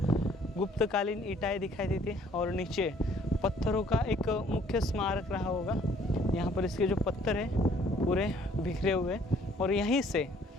गुप्तकालीन ईंटें दिखाई देती है और नीचे पत्थरों का एक मुख्य स्मारक रहा होगा। यहाँ पर इसके जो पत्थर हैं पूरे बिखरे हुए और यहीं से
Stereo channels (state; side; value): normal; both; correlation 0.60